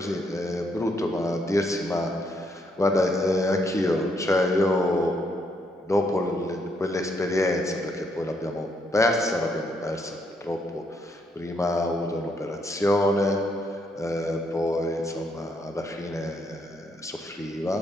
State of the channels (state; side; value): normal; both; correlation 0.74